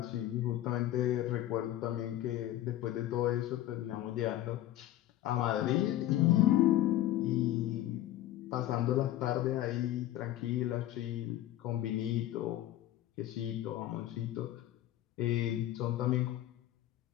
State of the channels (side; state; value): right; quieter; 13.7 dB